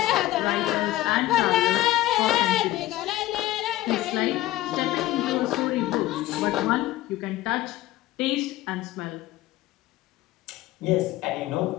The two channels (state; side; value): quieter; right; 15.8 dB